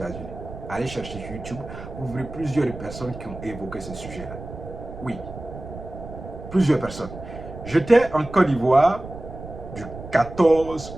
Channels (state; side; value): noise; right; rumble, 12 dB below the sound